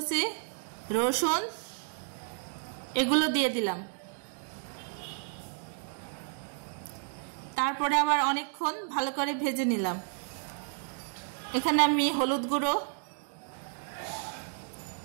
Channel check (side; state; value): left; silent; 57 dB below the other